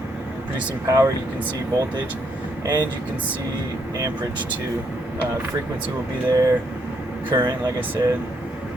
power, you can see voltage, and you can see amperage too. Frequency will be there, current, like I said.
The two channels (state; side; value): normal; both; correlation 0.74